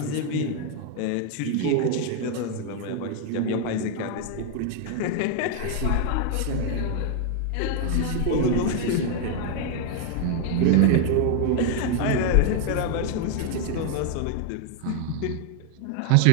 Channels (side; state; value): both; different; correlation 0.00